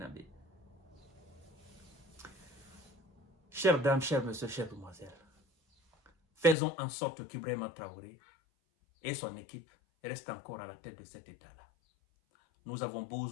Chères dames, chers messieurs, chères demoiselles, faisons en sorte qu'Ibrahima Traoré et son équipe restent encore à la tête de cet État-là. Nous avons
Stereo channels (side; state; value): right; drops out; at 6.6 s